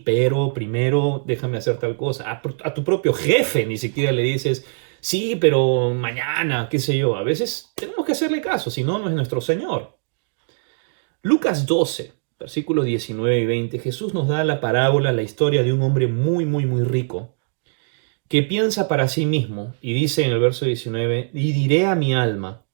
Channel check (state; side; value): silent; left; digital silence